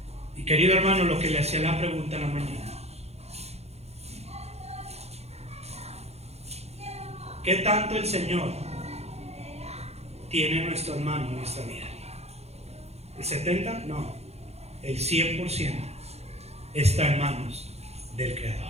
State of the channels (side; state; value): left; late; 0.31 ms